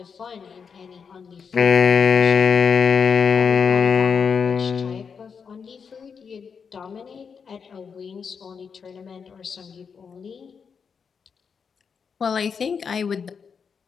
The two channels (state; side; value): quieter; right; 6.2 dB